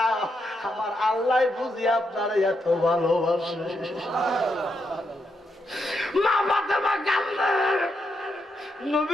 আমার আল্লাহ বুঝি আপনারে এত ভালোবাসে। মা ফাতেমা কান্দে,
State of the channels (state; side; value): normal; both; correlation 0.81